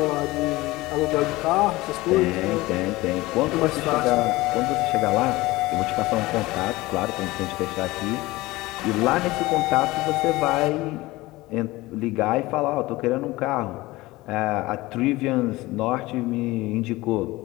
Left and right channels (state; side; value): quieter; right; 19.8 dB